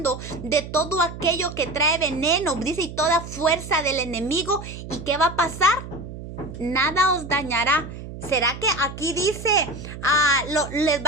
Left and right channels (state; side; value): noise; right; hum, 11 dB below the sound